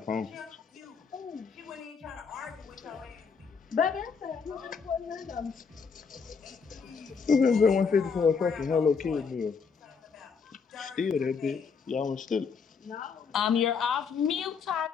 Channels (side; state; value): right; quieter; 5.7 dB